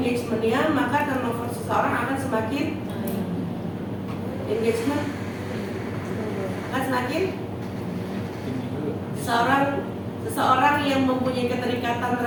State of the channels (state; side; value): identical; both; correlation 1.00